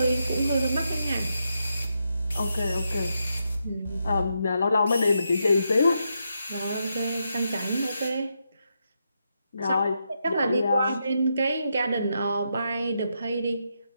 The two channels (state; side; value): inverted; both; correlation -0.83